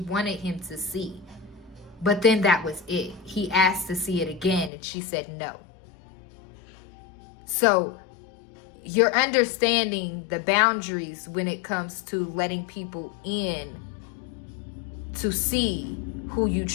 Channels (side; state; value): right; drops out; at 4.7 s